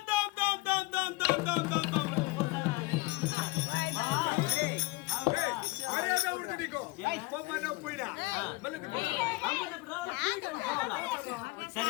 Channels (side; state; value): right; quieter; 23.2 dB